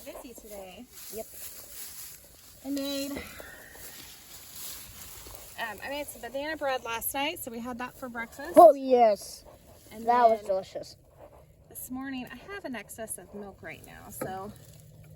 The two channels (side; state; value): both; identical; correlation 1.00